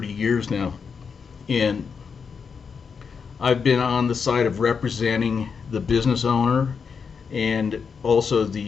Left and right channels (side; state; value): right; quieter; 5.9 dB